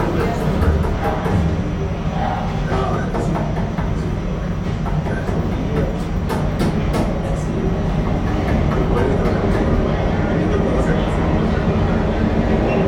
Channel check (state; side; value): identical; both; correlation 1.00